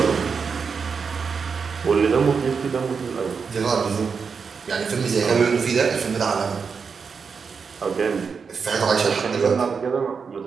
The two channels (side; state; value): left; quieter; 5.7 dB